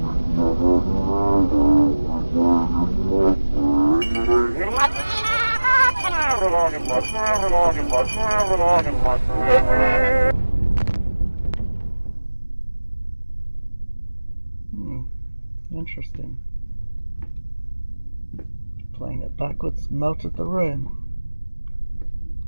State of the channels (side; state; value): both; inverted; correlation -1.00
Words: Interesting. Playing it backwards melted the room.